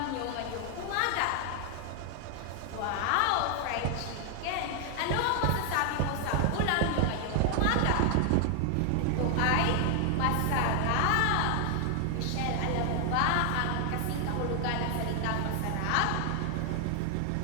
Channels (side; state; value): both; different; correlation 0.00